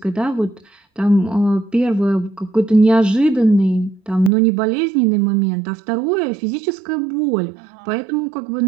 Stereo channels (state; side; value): drops out; left; at 4.3 s